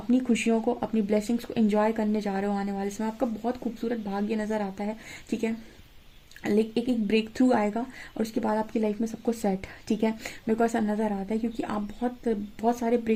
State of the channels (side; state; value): both; identical; correlation 1.00